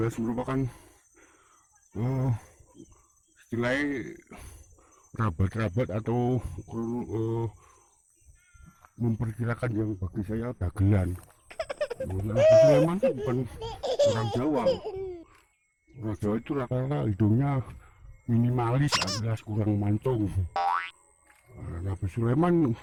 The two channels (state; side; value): identical; both; correlation 1.00